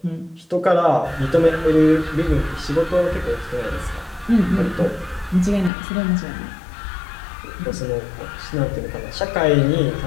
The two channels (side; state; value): right; drops out; at 5.7 s